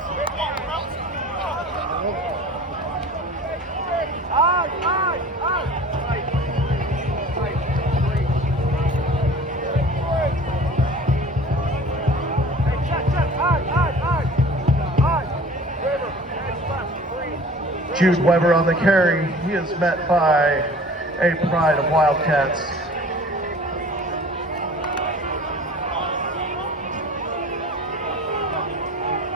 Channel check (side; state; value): both; normal; correlation 0.45